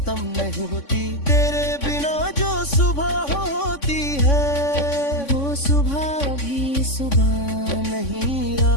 नहीं होती। तेरे बिना जो सुबह होती है, वो सुबह भी सुबह नहीं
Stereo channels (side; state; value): right; late; 3.5 ms